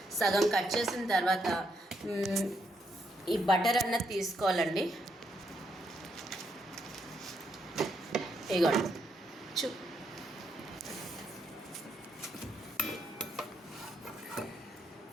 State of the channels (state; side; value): normal; both; correlation 0.77